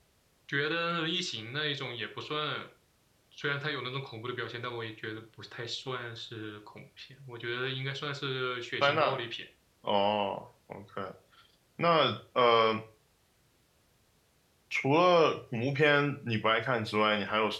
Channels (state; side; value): identical; both; correlation 1.00